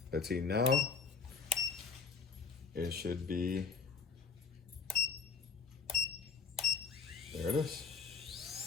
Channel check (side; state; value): right; quieter; 5.4 dB